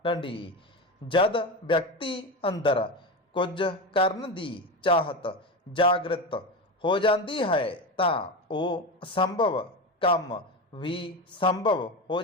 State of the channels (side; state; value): both; normal; correlation 0.20